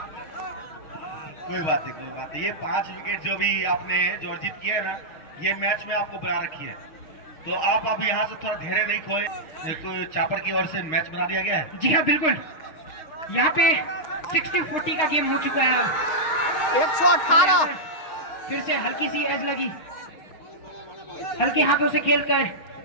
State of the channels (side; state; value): right; late; 6.4 ms